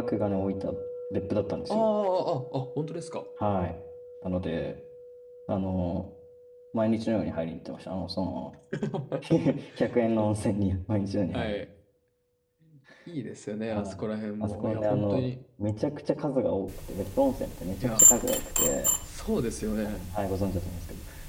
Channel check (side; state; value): both; identical; correlation 1.00